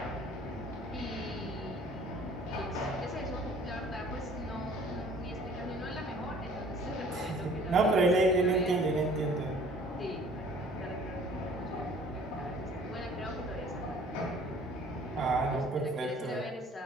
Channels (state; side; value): normal; both; correlation 0.52